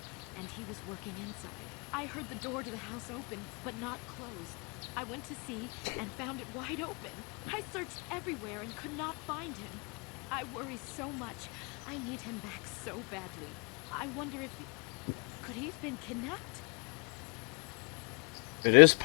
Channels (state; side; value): quieter; right; 36.1 dB